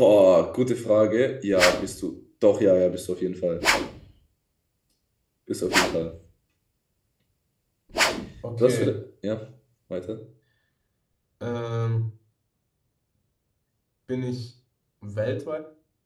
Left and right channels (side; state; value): both; identical; correlation 1.00